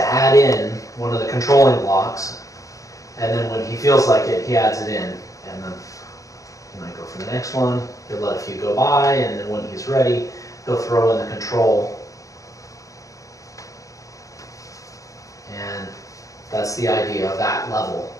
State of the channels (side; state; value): right; late; 0.16 ms